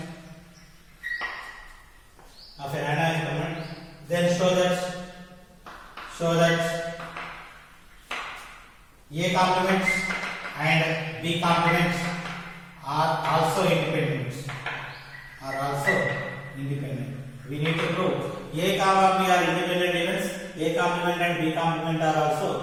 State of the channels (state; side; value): identical; both; correlation 1.00